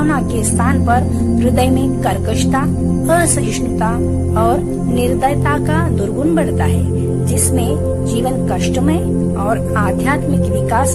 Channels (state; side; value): identical; both; correlation 1.00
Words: के स्थान पर हृदय में कर्कशता, असहिष्णुता और निर्दयता का दुर्गुण बढ़ता है, जिसमें जीवन कष्टमय और आध्यात्मिक